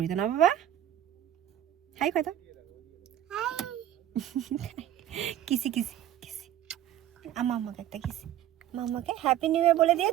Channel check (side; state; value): left; quieter; 11.8 dB